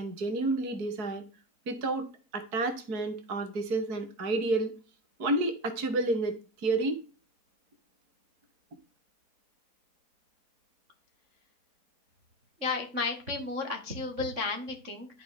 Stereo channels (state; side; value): late; left; 4.6 ms